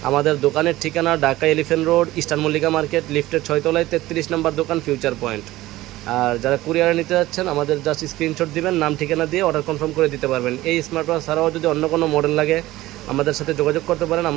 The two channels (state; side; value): quieter; left; 17.0 dB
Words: আমাদের দোকানের ঠিকানা Dhaka elephant road, eastern Mallika market, লিফটের 6 তলায় 33 নম্বর দোকান, ফিউচার পয়েন্ট। আর যারা কুরিয়ারে নিতে যাচ্ছেন, আমাদের জাস্ট স্ক্রিনশট দিবেন, নাম ঠিকানা দিয়ে অর্ডার কনফার্ম করে দিতে পারবেন। এই স্মার্ট ওয়াচ ছাড়াও যদি অন্য কোনো মডেল লাগে আমাদের সাথে যোগাযোগ করতে পারেন।